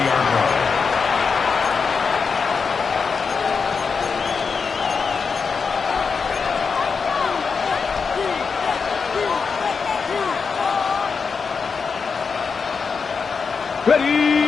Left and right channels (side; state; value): right; quieter; 5.4 dB